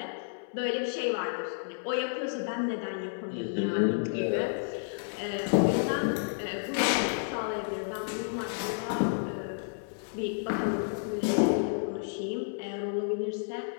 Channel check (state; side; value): silent; right; 57 dB below the other